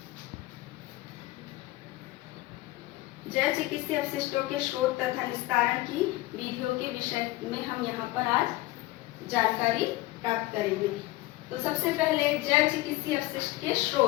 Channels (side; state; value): right; quieter; 18.6 dB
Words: जल चिकित्सीय अपशिष्टों के स्रोत तथा निस्तारण की विधियों के विषय में हम यहाँ पर आज जानकारी प्राप्त करेंगे। तो सबसे पहले जल चिकित्सीय अपशिष्ट के